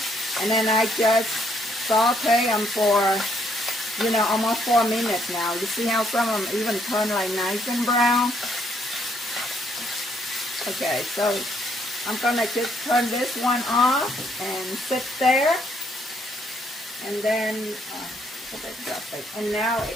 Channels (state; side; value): normal; both; correlation 0.70